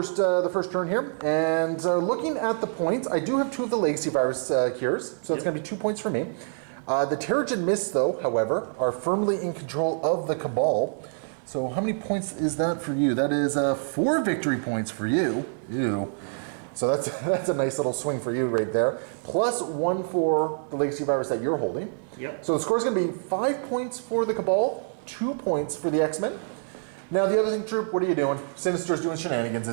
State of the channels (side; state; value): left; silent; digital silence